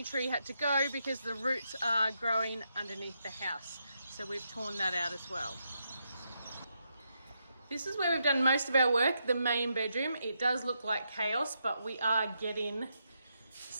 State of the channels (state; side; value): inverted; both; correlation -0.81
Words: tree had to go because the roots are growing underneath the house. So we've torn that out as well. This is where we've done most of our work, the main bedroom. It does look like chaos, but we are getting